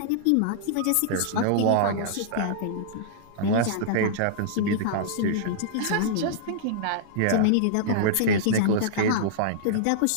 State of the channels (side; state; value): both; different; correlation -0.02